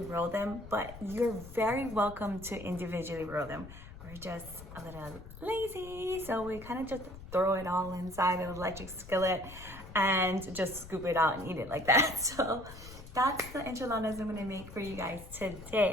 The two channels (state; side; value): noise; left; rumble, 15 dB below the sound